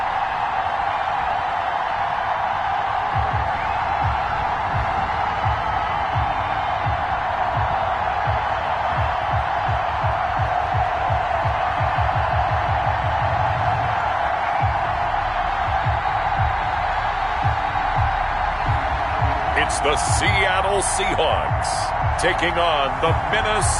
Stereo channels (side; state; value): both; identical; correlation 1.00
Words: It's the Seattle Seahawks taking on the